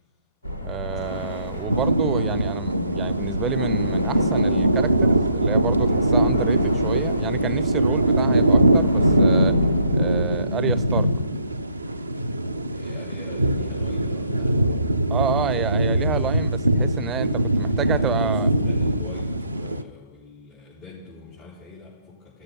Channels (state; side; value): inverted; both; correlation -0.67